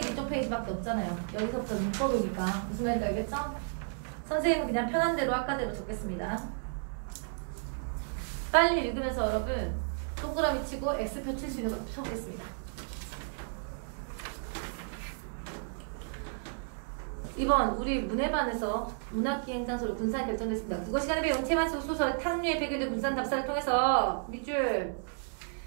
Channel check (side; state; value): left; silent; digital silence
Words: 없잖아요. 여기서부터 문법이니까. 무슨 말인지 알겠죠? 선생님은 그냥 편한 대로 아까대로 적겠습니다. 빨리 읽으면서 여러분 동그라미 치고 X표 칠 수 있는 것도 쳐보겠습니다. 이번 우리 문해반에서 문학기행 장소로 군산이 결정됐습니다. 국어 시간에 배운 채만수 소설 탕류의 배경된 군산 답사를 통해서 밑줄